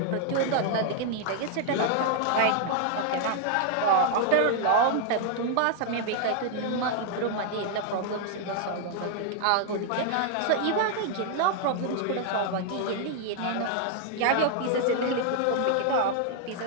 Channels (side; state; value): both; different; correlation 0.00